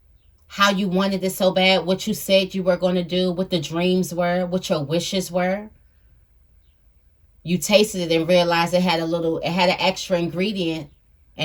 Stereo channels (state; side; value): identical; both; correlation 1.00